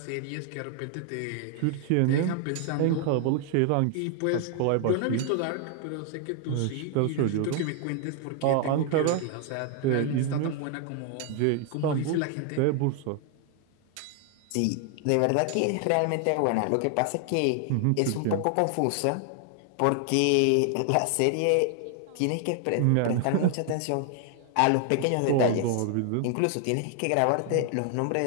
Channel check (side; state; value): both; different; correlation 0.00